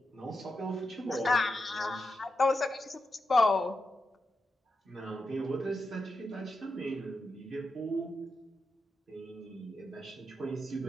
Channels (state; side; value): normal; both; correlation 0.87